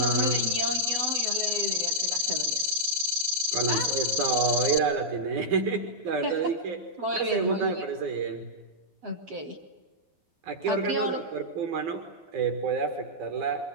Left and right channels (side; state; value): left; late; 12 ms